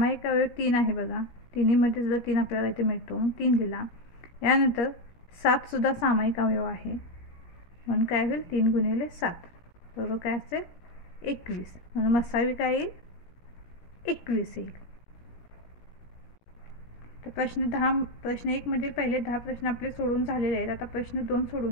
अवयव 3 आहे बघा, तिन्हीमध्ये सुद्धा 3 आपल्याला इथे मिळतो, 3 लिहिला. यानंतर 7सुद्धा सामायिक अवयव आहे, म्हणून काय होईल 3 गुणिले 7 बरोबर काय असेल 21, म्हणून मसावी काय येईल 21 येईल. तर प्रश्न 1 मधील पहिले 10 प्रश्न आपले सोडून झालेले आहेत. आता प्रश्न 2 सोडून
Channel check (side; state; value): right; late; 17 ms